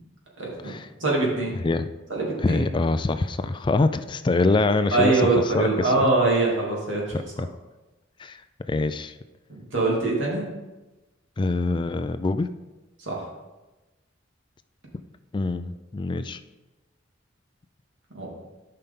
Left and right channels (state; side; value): normal; both; correlation 0.42